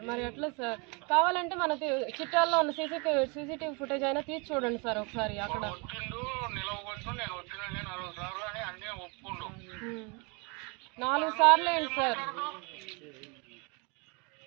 మరి ఎట్లా సార్? కావాలంటే మనకి చిట్టాల్లో ఉన్న సీసీటీవీ ఫుటేజ్ అయినా తీసి చూడండి సార్ ఒకసారి. అక్కడ 4 సార్లు ఏంటి సార్?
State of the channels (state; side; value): quieter; left; 31.5 dB